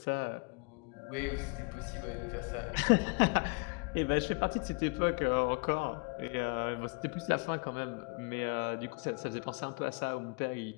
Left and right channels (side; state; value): right; quieter; 33.4 dB